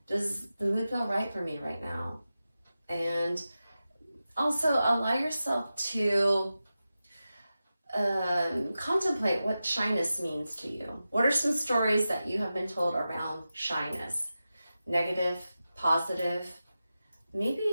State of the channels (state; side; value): inverted; both; correlation -0.93